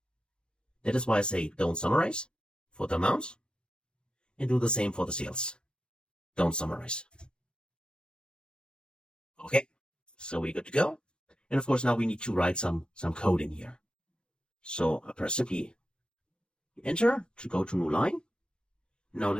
That is why I say don't summarize for the amount and do the same for the sales. Don't summarize. Okay, so we're good to go. And of course, now we need to write some code in here. So I press simply enter to go to new line. Now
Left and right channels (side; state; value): right; late; 0.054 ms